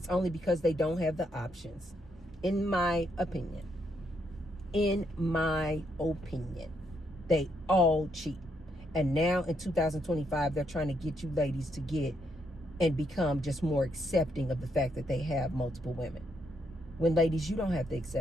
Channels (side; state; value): both; normal; correlation 0.76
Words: only because they don't have the options. In my opinion. In my opinion. They all cheat. And now in 2025, they're trying to get you ladies to get and become just more accepting of the fact that they have multiple women. When ladies, you don't have to